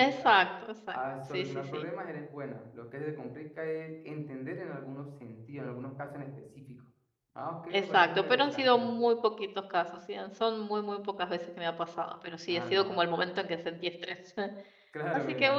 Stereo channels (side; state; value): both; identical; correlation 1.00